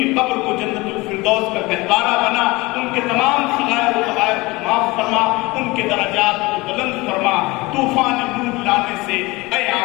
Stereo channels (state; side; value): quieter; right; 22.6 dB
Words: قبر کو جنت الفردوس کا گہوارہ بنا، ان کے تمام صغائر و کبائر کو معاف فرما، ان کے درجات کو بلند فرما۔ طوفان نور لانے سے اے